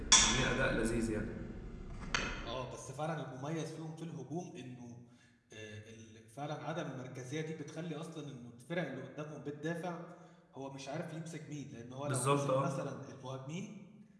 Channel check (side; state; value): both; identical; correlation 1.00